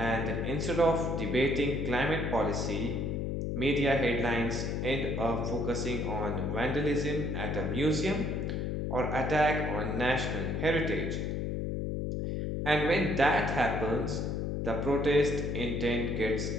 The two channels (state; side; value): noise; left; hum, 1 dB below the sound